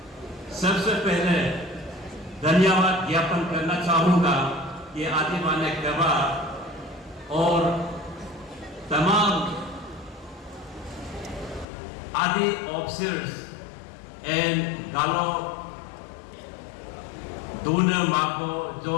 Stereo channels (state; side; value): drops out; right; at 11.7 s